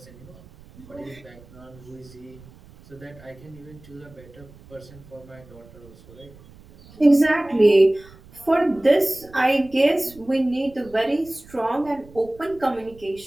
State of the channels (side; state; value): right; noise; rumble, 22 dB below the sound